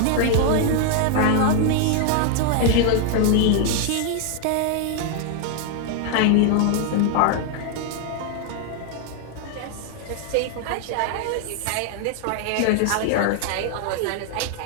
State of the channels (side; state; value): both; different; correlation 0.00